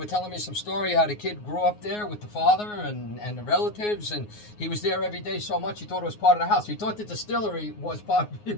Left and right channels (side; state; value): right; late; 9.6 ms